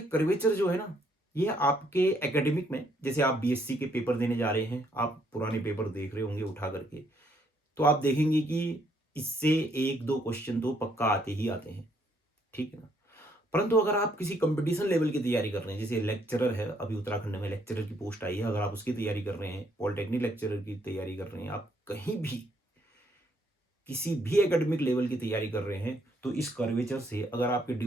कर्वेचर जो है ना, ये आपके एकेडमिक में, जैसे आप बीएससी के पेपर देने जा रहे हैं, आप पुराने पेपर देख रहे होंगे उठा करके, तो आप देखेंगे कि इससे एक दो क्वेश्चन तो पक्का आते ही आते हैं। ठीक है ना। परंतु अगर आप किसी कंपटीशन लेवल की तैयारी कर रहे हैं, जैसे लेक्चरर है, अभी उत्तराखंड में लेक्चरर की पोस्ट आई है, अगर आप उसकी तैयारी कर रहे हैं, पॉलिटेक्निक लेक्चरर की तैयारी कर रहे हैं, आप कहीं भी किसी भी एकेडमिक लेवल की तैयारी कर रहे हैं, तो इस कर्वेचर से, अगर आपके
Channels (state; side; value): normal; both; correlation 0.70